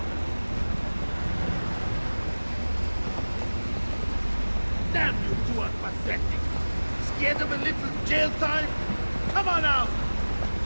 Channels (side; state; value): both; inverted; correlation -1.00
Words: Damn, you two are pathetic. Scared of a little jail time? Come on out.